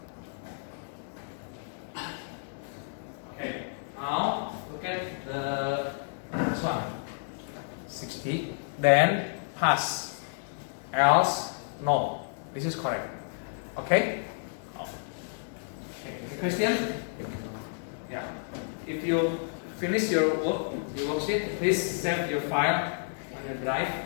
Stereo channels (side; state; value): right; silent; digital silence